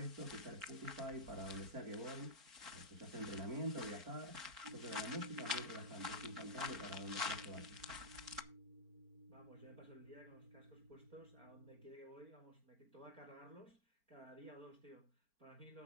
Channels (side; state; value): left; late; 4.4 ms